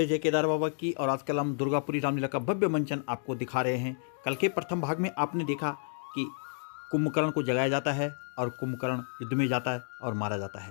जय केदार बाबा की। और आजकल हम दुर्गापुरी रामलीला का भव्य मंचन आपको दिखा रहे हैं। कल के प्रथम भाग में आपने देखा कि कुंभकर्ण को जगाया जाता है और कुंभकर्ण युद्ध में जाता है और मारा जाता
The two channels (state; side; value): silent; right; 57 dB below the other